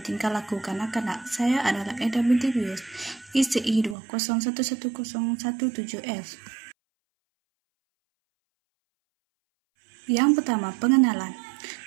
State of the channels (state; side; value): drops out; left; at 4.0 s